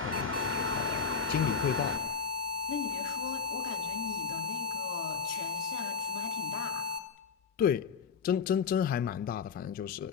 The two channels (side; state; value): right; quieter; 5.9 dB